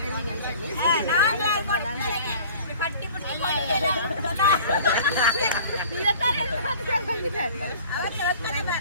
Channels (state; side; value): inverted; both; correlation -0.46